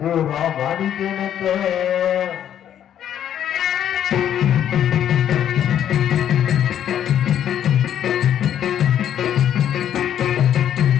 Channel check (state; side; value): quieter; right; 10.1 dB